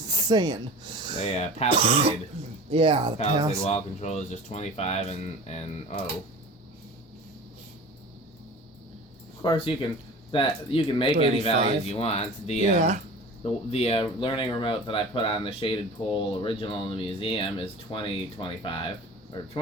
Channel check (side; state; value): both; normal; correlation 0.37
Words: The Palisade. Yeah, the Palisade wall control is just 25 and oh. Of course, you can make 35. any values you want. The learning remote that I put on the shaded pole original in the museum is 20, 25. Or